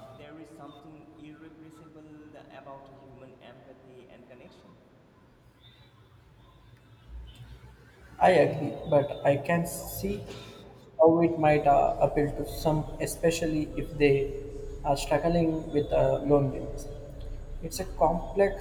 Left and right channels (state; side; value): identical; both; correlation 1.00